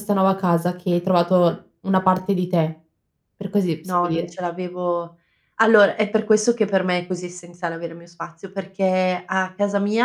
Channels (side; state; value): both; identical; correlation 1.00